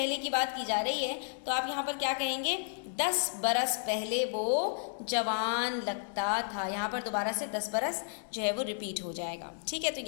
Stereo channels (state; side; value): silent; right; digital silence